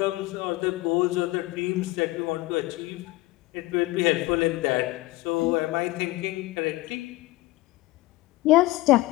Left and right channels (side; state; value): right; quieter; 19.5 dB